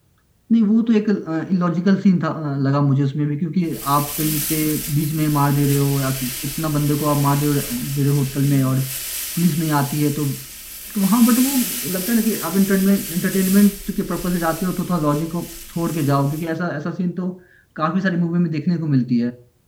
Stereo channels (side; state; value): both; identical; correlation 1.00